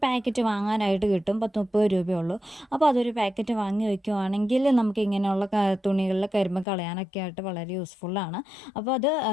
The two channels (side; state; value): right; drops out; at 6.7 s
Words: പാക്കറ്റ് വാങ്ങാനായിട്ട് കിട്ടും. 10-30 രൂപയുള്ളൂ. അപ്പോൾ അതൊരു പാക്കറ്റ് വാങ്ങി വയ്ക്കുവാണെങ്കിൽ നമുക്ക് ഇങ്ങനെയുള്ള തുണികളിൽ കരിമ്പ് കളയാനൊക്കെ ആയിട്ട് വളരെ യൂസ്ഫുള്ളാണ്. അപ്പോൾ അത്